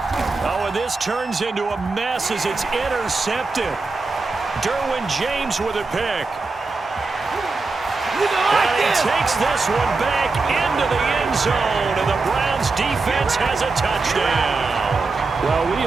Oh, and this turns into a mess as it's intercepted. Derwin James with a pick. And he takes this one back into the end zone, and the Browns defense has a touchdown. Well, we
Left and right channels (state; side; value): quieter; left; 3.9 dB